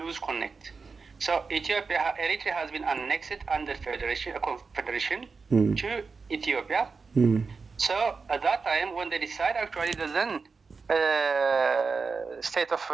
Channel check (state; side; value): quieter; left; 4.7 dB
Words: connect. So Eritrea has been annexed under confederation to Ethiopia. So at that time, when they decide actually the then state of